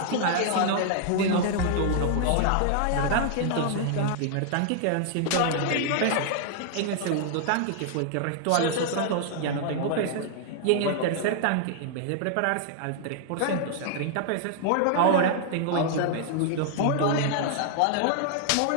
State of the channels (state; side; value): different; both; correlation -0.01